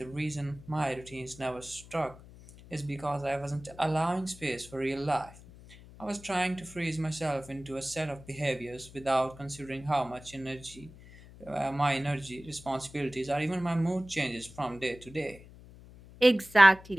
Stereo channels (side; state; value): left; noise; hum, 19 dB below the sound